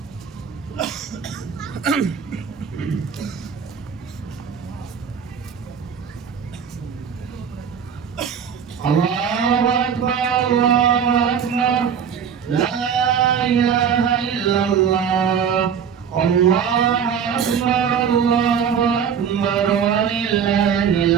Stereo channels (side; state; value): left; quieter; 7.4 dB